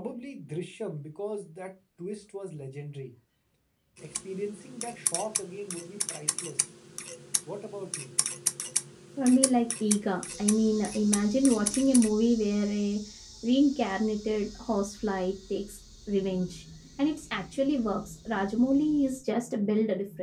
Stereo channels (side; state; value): both; identical; correlation 1.00